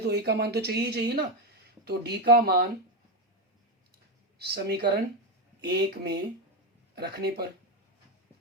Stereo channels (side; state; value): both; normal; correlation 0.10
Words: a का मान तो चाहिए ही चाहिए ना। तो d का मान समीकरण 1 में रखने पर